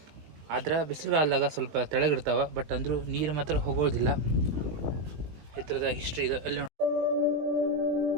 ಆದ್ರೆ ಬಿಸಿಲುಗಾಲದಾಗ ಸ್ವಲ್ಪ ತೆಳಗಿರ್ತಾವೆ, ಬಟ್ ಅಂದರೂ ನೀರು ಮಾತ್ರ ಹೋಗೋದಿಲ್ಲ. ಈ ಥರದ ಹಿಸ್ಟ್ರಿ ಇದೆ ಅಲ್ಲಿ.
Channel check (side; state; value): left; late; 19 ms